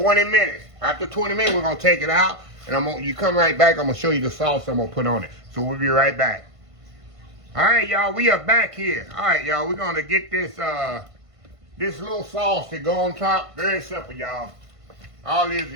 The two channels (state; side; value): late; left; 1.5 ms